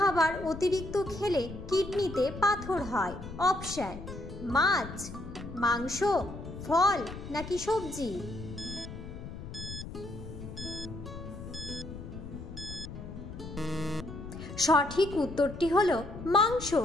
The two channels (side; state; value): left; noise; rumble, 11 dB below the sound